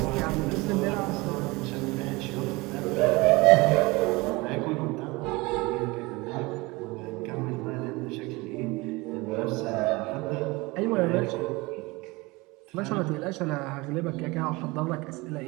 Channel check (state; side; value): quieter; left; 23.6 dB